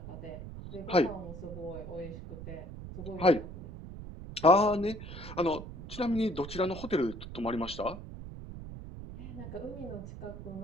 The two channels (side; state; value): right; noise; rumble, 11 dB below the sound